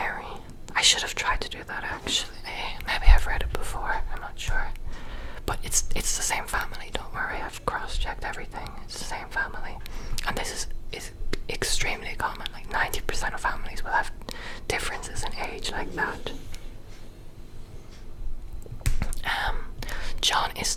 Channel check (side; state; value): both; identical; correlation 1.00